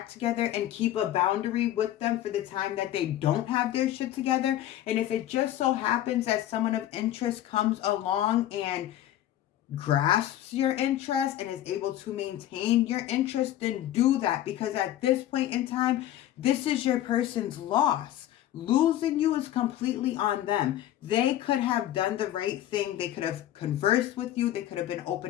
together and keep a boundary with them for the time that they don't have their shit together. And if it just so happens that someone of interest comes along and grasps your interest and is able to maintain your interest, then do that, because at this point in time, this is your person's loss. Losing you is completely on them. They could have done the right thing. They could have conversed with you. They could have been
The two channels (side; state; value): right; quieter; 12.9 dB